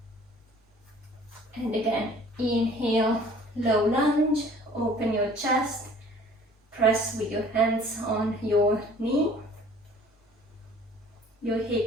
And again, inhale, low lunge, open your chest, press with your hands on your knee. Your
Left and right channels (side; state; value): both; normal; correlation 0.52